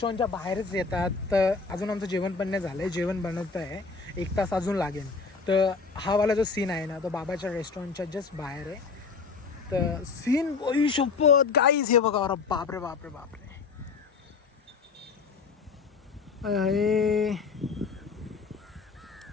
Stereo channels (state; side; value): quieter; right; 4.8 dB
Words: बाहेरच येतात. तर अजून आमचं जेवण पण नाही झालंय, जेवण बनवत आहे, 1 तास अजून लागेल. तर हा वाला जो सीन आहे ना तो बाबाच्या रेस्टॉरंटच्या जस्ट बाहेर आहे. तर सीन बघू शपथ गाईज, हे बघा, अरे बापरे बापरे बापरे,